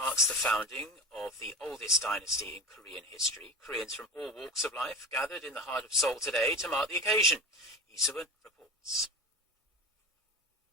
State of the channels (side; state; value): both; normal; correlation 0.29